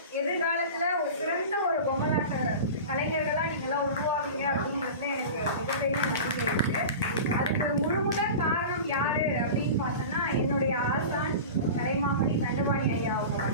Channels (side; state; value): both; inverted; correlation -0.32